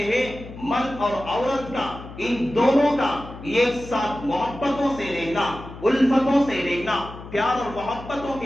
ہے مرد اور عورت کا، ان دونوں کا ایک ساتھ محبتوں سے رہنا، الفتوں سے رہنا، پیار اور محبتوں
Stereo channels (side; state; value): left; noise; hum, 14 dB below the sound